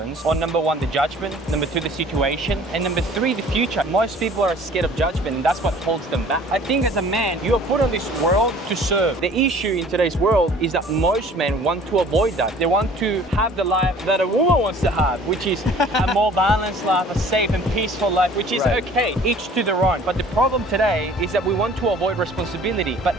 on number one, the judgment, number two, the situation, and number three, the future. Most people are scared of judgment, and that's what holds them back. I think as a man, you are put on this world to serve. The issue in today's world is that most men want to avoid that. They want to have the life that a woman wants to have, which is a more balanced life, a safe and peaceful life, which is okay, each to their own. But the problem today is that we want to avoid responsibility. But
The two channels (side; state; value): both; normal; correlation 0.50